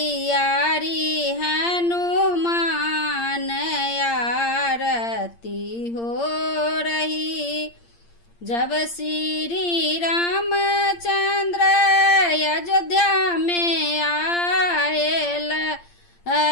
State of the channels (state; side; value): late; right; 8.7 ms